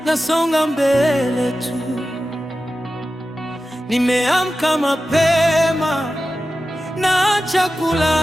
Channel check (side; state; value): both; normal; correlation 0.93